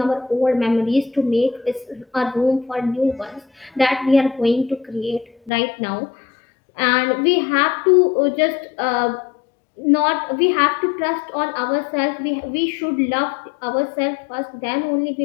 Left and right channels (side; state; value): right; drops out; at 5.5 s